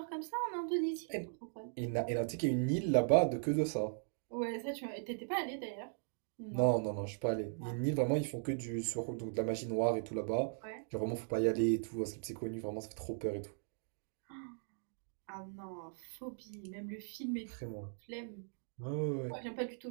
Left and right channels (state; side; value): silent; left; digital silence